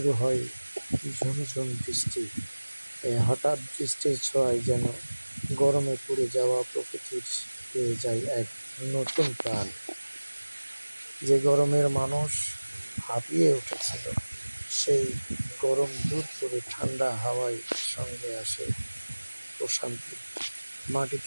হয় ঝুমঝুম বৃষ্টি। এই হঠাৎ বৃষ্টির ছোঁয়ায় যেন গরমে পুড়ে যাওয়া প্রকৃতির পেয়ে যায় এক নতুন প্রাণ। যে গরমের মানুষ হাঁপিয়ে উঠেছিল, সেই গরম দূর করে ঠান্ডা হাওয়ায় সঙ্গে আসে প্রশান্তি।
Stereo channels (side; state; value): both; inverted; correlation -1.00